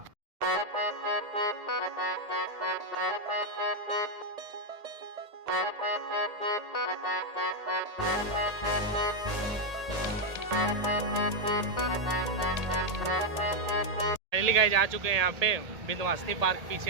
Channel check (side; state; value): left; late; 1.8 ms